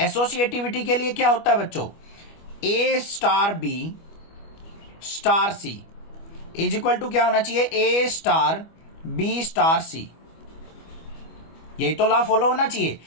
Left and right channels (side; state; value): right; late; 25 ms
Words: के लिए क्या होता है बच्चों, a star b star c is equal to क्या होना चाहिए, a star b star c. यही तो लॉ फॉलो होना चाहिए।